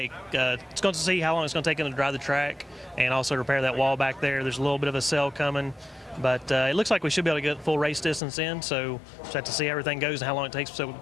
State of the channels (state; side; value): drops out; right; at 8.2 s